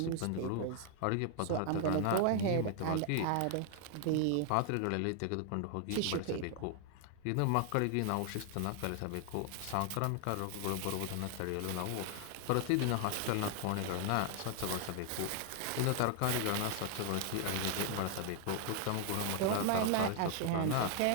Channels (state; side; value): different; both; correlation 0.00